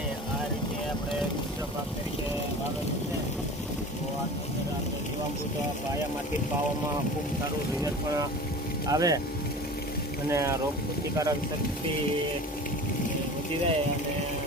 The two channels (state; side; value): normal; both; correlation 0.37